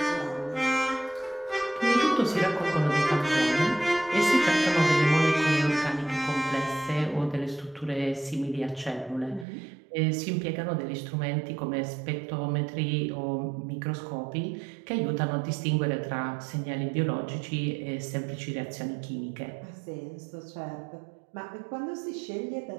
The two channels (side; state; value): left; drops out; at 9.5 s